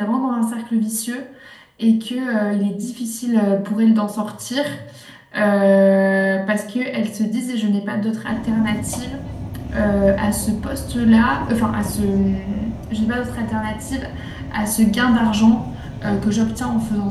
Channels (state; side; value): identical; both; correlation 1.00